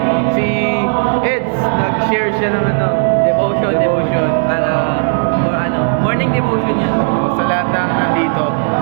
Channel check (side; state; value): left; silent; 64 dB below the other